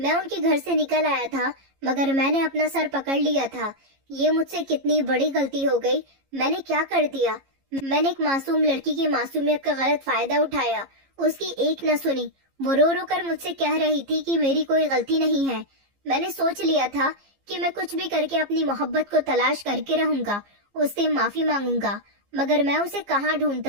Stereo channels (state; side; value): late; left; 15 ms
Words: उनके घर से निकल आया था, मगर मैंने अपना सर पकड़ लिया था। ये मुझसे कितनी बड़ी गलती हो गई, मैंने क्या कर दिया। मैंने एक मासूम लड़की की मासूमियत का गलत फायदा उठाया, उसकी एक न सुनी। वो रो रो कर मुझसे कह रही थी कि मेरी कोई गलती नहीं है। मैंने सोच लिया था कि मैं कुछ भी करके अपनी मोहब्बत को तलाश करके रहूंगा, उससे माफी मांगूंगा, मगर मैं उसे कहाँ